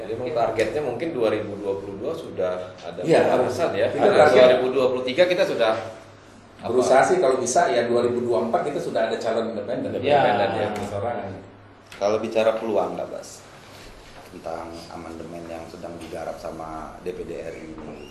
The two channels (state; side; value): identical; both; correlation 1.00